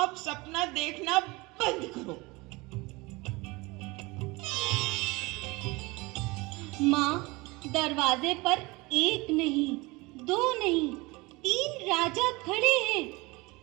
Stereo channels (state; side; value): quieter; left; 23.8 dB